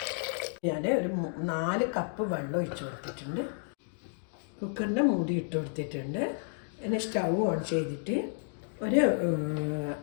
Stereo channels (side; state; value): right; silent; digital silence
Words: ഞാൻ ഒരു 4 കപ്പ് വെള്ളം ഒഴിച്ചു കൊടുത്തിട്ടുണ്ട്. കുക്കറിൻ്റെ മൂടി ഇട്ട് കൊടുത്തിട്ടുണ്ട്. പിന്നെ സ്റ്റൗ ഓൺ ചെയ്തിട്ട് ഒരു